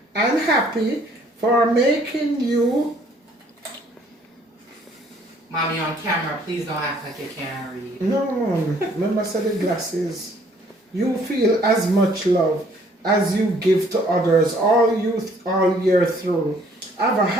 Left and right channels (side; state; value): both; normal; correlation 0.61